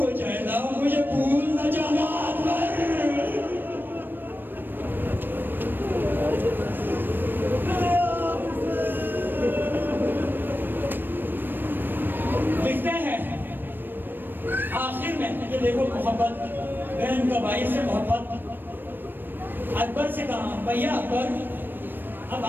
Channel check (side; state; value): left; late; 0.094 ms